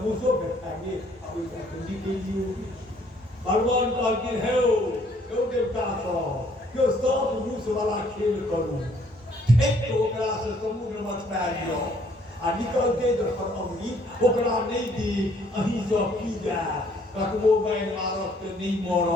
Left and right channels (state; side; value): normal; both; correlation 0.63